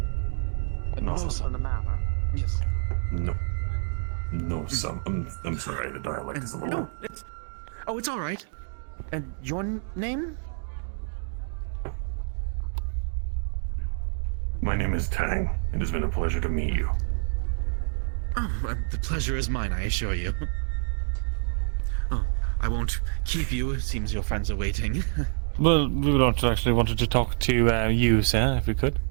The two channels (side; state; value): left; silent; digital silence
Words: No No, something. the matter. Yes. no, no. I'm sorry. The dialect is a little. No, it's. Oh, it's all right. And your name? My name is Tang. It has been a pleasure to meet you. Oh, the pleasure is mine, I assure you. Oh, I won't keep you. It seems your friends are waiting. Well, we would actually wanted to talk to you, sir, if we could.